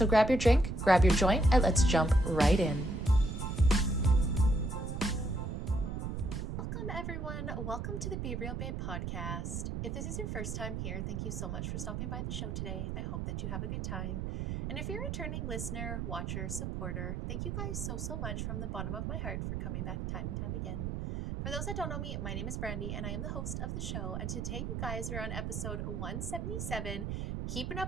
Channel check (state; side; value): noise; right; rumble, 3 dB below the sound